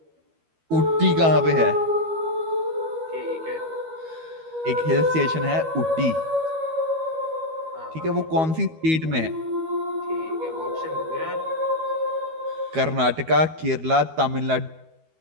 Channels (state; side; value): late; left; 12 ms